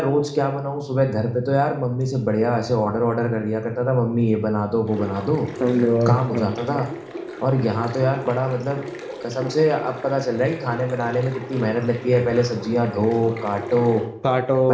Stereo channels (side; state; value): both; identical; correlation 1.00